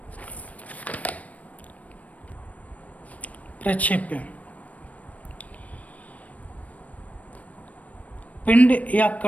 प्रक्षेप्य पिंड या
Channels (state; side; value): late; right; 0.069 ms